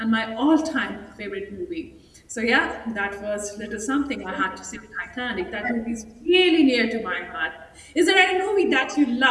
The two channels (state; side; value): identical; both; correlation 1.00